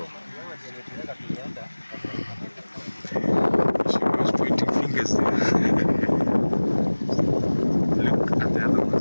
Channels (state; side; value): inverted; both; correlation -1.00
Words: She was pointing fingers there. Look at the other